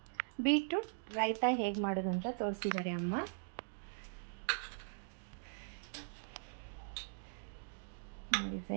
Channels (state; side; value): silent; left; digital silence